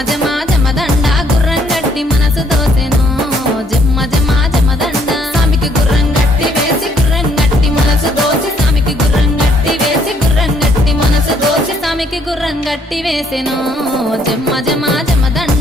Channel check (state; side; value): normal; both; correlation 0.67